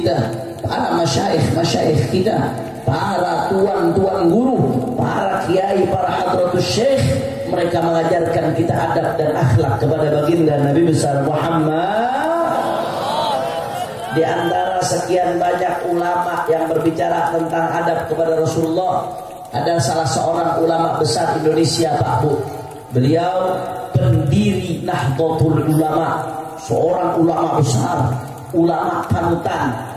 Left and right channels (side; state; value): both; identical; correlation 1.00